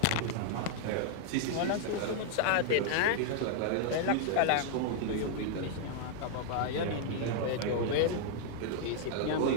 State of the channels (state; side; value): different; both; correlation -0.01